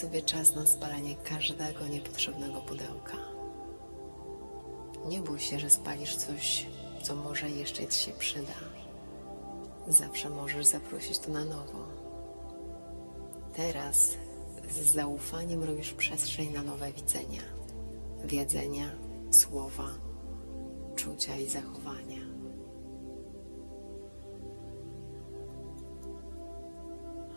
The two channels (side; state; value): both; inverted; correlation -1.00